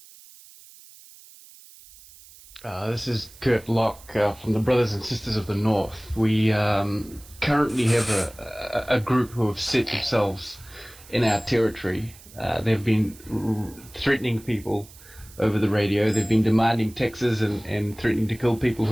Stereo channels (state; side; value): noise; right; hiss, 22 dB below the sound